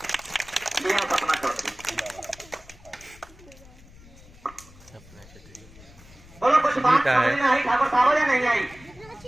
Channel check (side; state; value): left; noise; rumble, 22 dB below the sound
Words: ये सपना चौधरी। बोलो कुछ बात समझ में आई ठाकुर साहब या नहीं आई?